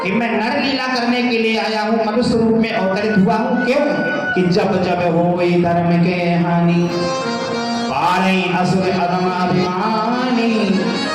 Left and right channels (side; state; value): both; identical; correlation 1.00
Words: कि मैं नर लीला करने के लिए आया हूँ, मनुष्य रूप में अवतरित हुआ हूँ। क्यों कि जब जब होई धर्म के हानि, पारई असुर अधम अभिमानी,